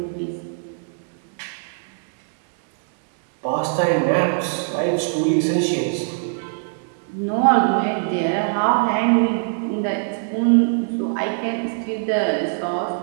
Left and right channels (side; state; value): left; silent; digital silence